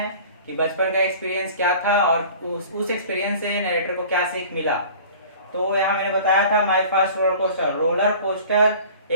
कि बचपन का एक्सपीरियंस क्या था और उस एक्सपीरियंस से नरेटर को क्या सीख मिला। तो यहाँ मैंने बताया था my first roller coaster. Roller coaster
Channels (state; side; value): inverted; both; correlation -0.44